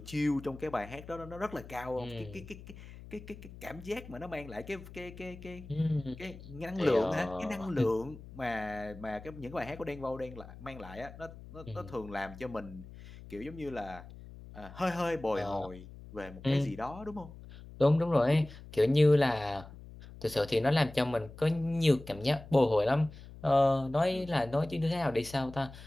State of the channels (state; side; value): noise; left; hum, 16 dB below the sound